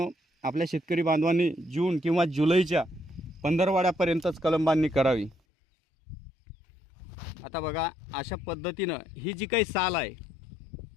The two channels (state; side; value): drops out; right; at 5.4 s